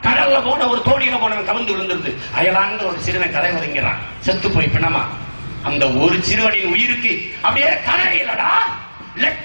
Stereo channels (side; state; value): both; inverted; correlation -1.00